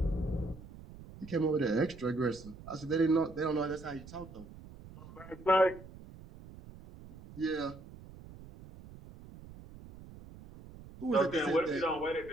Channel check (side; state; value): right; noise; rumble, 17 dB below the sound